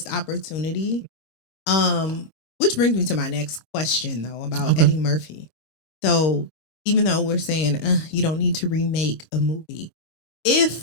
opportunity. Which brings me to my next question, though, about Eddie Murphy. So even though we're saying you don't need to remake a movie,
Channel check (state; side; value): late; right; 26 ms